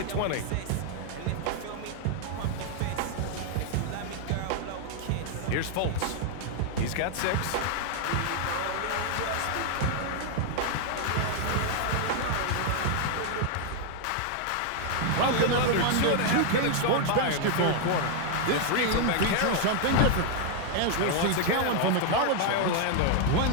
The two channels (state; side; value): different; both; correlation 0.00